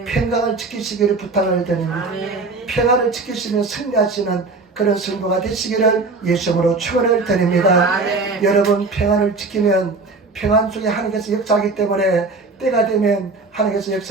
평강을 지키시기를 부탁을 드립니다. 아멘. 평안을 지키시며 승리하시는 그런 성도가 되시기를 예수님으로 축원을 드립니다. 아멘. 여러분 평안을 지키면 평안 속에 하나님께서 역사하기 때문에 때가 되면 하나님께서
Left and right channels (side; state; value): left; quieter; 3.8 dB